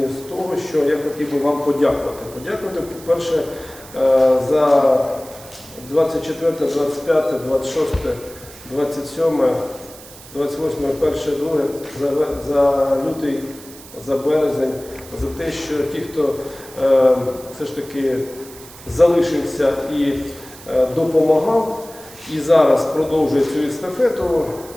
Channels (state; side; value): noise; right; hiss, 19 dB below the sound